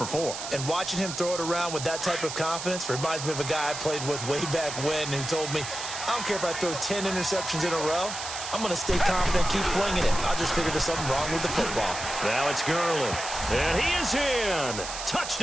4. And watching him throw it around with that type of confidence reminds me of a guy I played with way back when who told me, I don't care if I throw 10 interceptions in a row. I'm going to stay confident, keep flinging it. I just figured there's something wrong with the football. Now it's Gurley. And he is in.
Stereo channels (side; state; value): right; noise; hiss, 7 dB below the sound